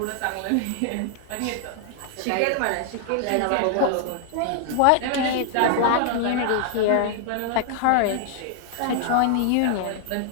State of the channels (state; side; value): different; both; correlation 0.00